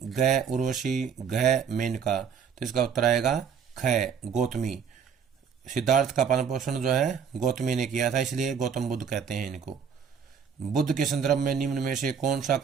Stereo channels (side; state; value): left; quieter; 7.1 dB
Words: ग उर्वशी, घ मेनका। तो इसका उत्तर आएगा ख गौतमी। सिद्धार्थ का पालन पोषण जो है गौतमी ने किया था, इसलिए गौतम बुद्ध कहते हैं इनको। बुद्ध के संदर्भ में निम्न में से कौन सा